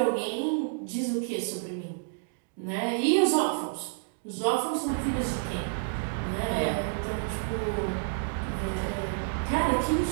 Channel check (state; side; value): silent; left; digital silence